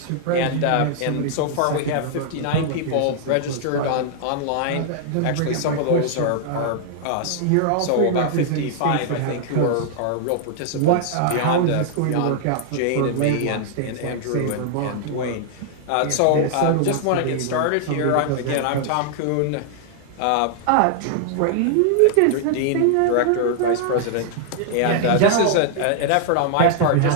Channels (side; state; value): both; different; correlation -0.01